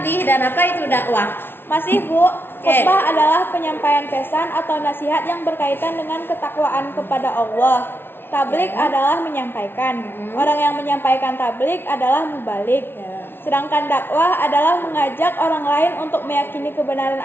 dan apa itu dakwah? Masih, Bu. Khutbah adalah penyampaian pesan atau nasihat yang berkaitan dengan ketakwaan kepada Allah. Tablik adalah menyampaikan. Orang yang menyampaikan tablik adalah mubalik. Sedangkan dakwah adalah mengajak orang lain untuk meyakini kebenaran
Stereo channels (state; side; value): late; right; 0.11 ms